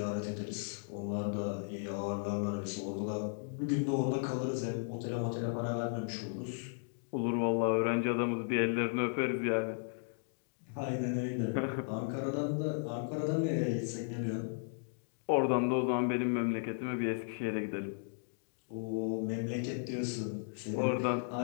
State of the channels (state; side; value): silent; right; digital silence